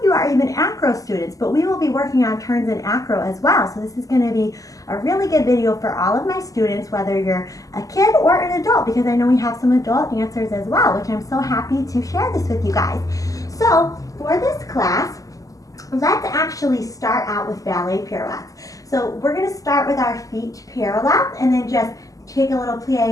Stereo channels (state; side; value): late; right; 0.17 ms